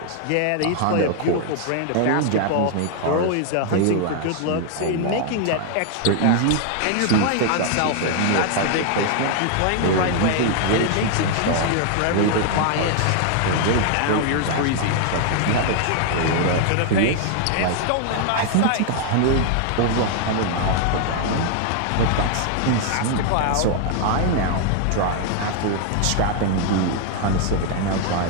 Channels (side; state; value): both; different; correlation 0.00